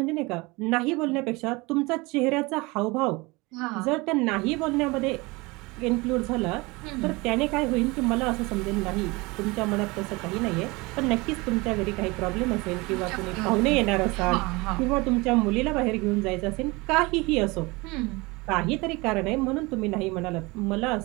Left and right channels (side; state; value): left; quieter; 24.4 dB